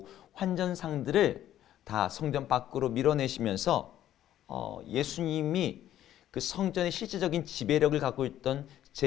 환전상들을 다 성전 밖으로 밀어내시면서 예수님이 그 성전의 실질적인 지배력을 갖고 있던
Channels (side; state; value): right; quieter; 12.1 dB